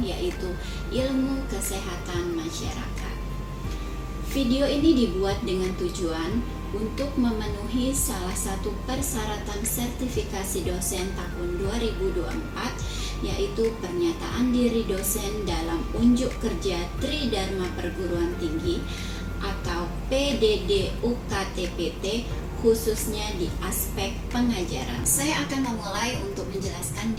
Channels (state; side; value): identical; both; correlation 1.00